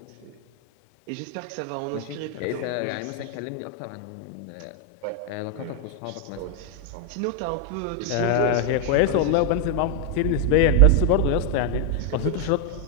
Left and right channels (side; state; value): both; different; correlation 0.00